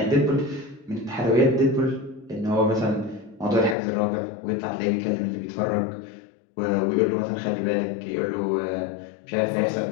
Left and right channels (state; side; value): drops out; right; at 3.8 s